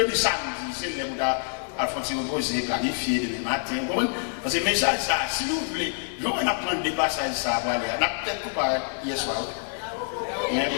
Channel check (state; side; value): silent; right; 61 dB below the other